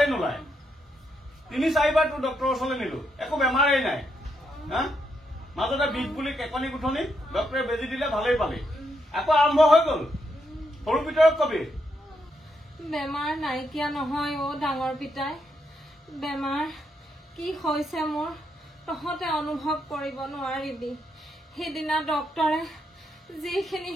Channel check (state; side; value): normal; both; correlation 0.79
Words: নোলায় ৩-৪বাৰ তোৰ ডক্টৰৰ ওচৰলৈ নিলো একো বেমাৰেই নাই হা মাজতে বিষ বুলি কেকনি গুঠনি ডক্টৰে বেজি দিলে ভালেই পালি আকৌ আৰম্ভ হৈ গ'ল সৰু ভিতৰত কবি বেমাৰ নাইকিয়া নহয় ডাঙৰ পিতাই বেমাৰ কি হৈছে মোৰ তহঁতে অনুভৱ কৰিব নোৱাৰিবি সেইদিনা ডক্টৰে